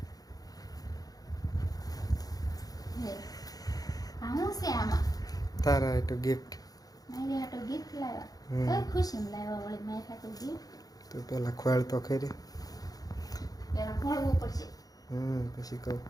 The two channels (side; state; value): right; late; 0.18 ms